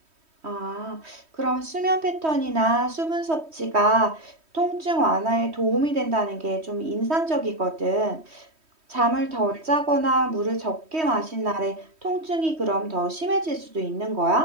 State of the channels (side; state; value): left; late; 3.1 ms